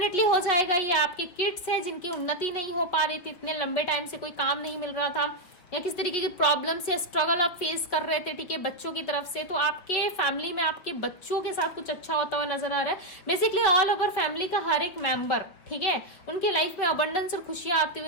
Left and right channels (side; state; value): right; late; 5.7 ms